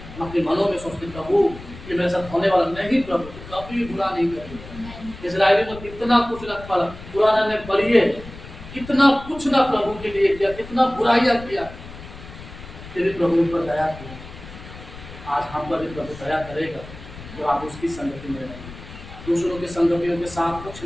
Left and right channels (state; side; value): noise; left; rumble, 15 dB below the sound